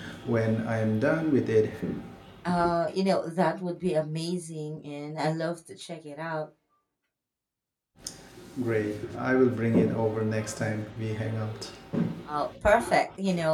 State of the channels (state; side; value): identical; both; correlation 1.00